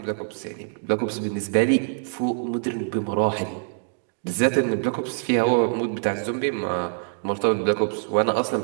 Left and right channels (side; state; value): left; silent; digital silence